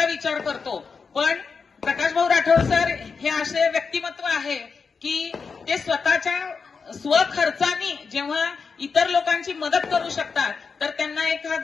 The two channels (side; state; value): right; quieter; 5.2 dB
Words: विचार करतो, पण प्रकाश भाऊ राठोड सर हे असे व्यक्तिमत्व आहे की ते स्वतःच्या स्वखर्चानी जेव्हा इतर लोकांची मदत करू शकतात तर त्यांना